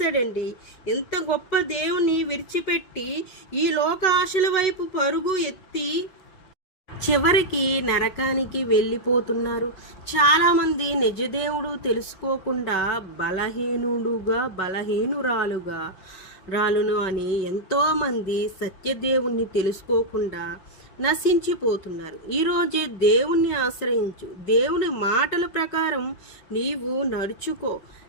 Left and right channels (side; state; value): right; late; 5.3 ms